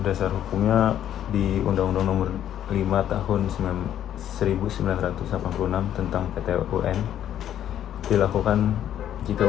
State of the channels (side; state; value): right; quieter; 10.8 dB